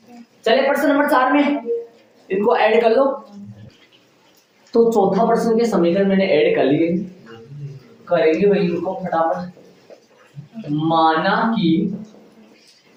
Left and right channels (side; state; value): both; identical; correlation 1.00